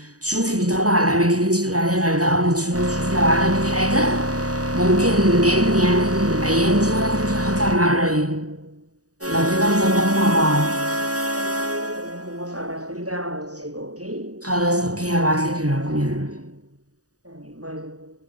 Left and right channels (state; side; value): late; left; 0.67 ms